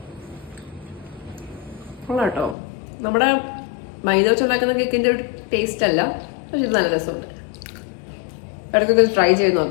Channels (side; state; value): right; drops out; at 2.6 s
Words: കേട്ടോ, നമ്മുടെ മൈദ വെച്ചുണ്ടാക്കുന്ന കേക്കിൻ്റെ ഒരു ടേസ്റ്റ് അല്ല, പക്ഷെ ഇത് നല്ല രസമുണ്ട്. ഇടയ്ക്കൊക്കെ ട്രൈ ചെയ്ത്